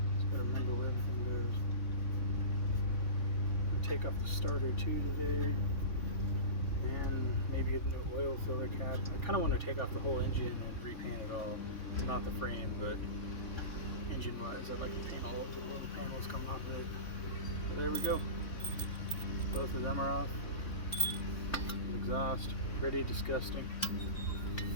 Just got to remember where everything goes. Take off the starter too today. And maybe get a new oil filler cap. I kind of want to take off the whole engine and repaint it all. Not the frame, but engine wise. I'd like to paint all of the little panels coming off of it. But there we go. Both of them are off. Exhaust, pretty disgusting.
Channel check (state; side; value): late; right; 3.6 ms